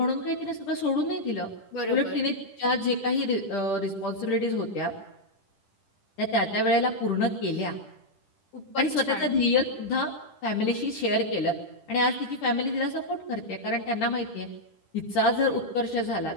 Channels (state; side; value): late; right; 10 ms